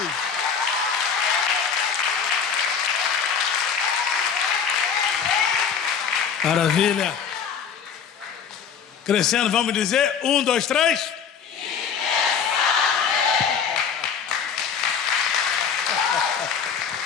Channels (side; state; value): right; quieter; 6.9 dB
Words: Maravilha. Crescendo, vamos dizer, 1, 2, 3.